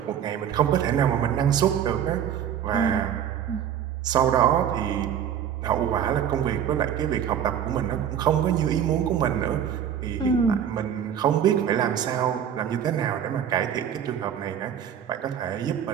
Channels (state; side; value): quieter; left; 9.2 dB